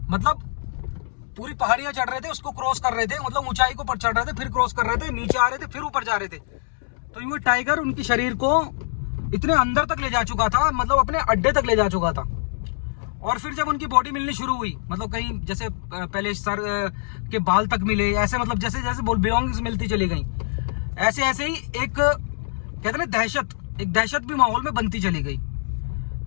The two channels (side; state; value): right; silent; digital silence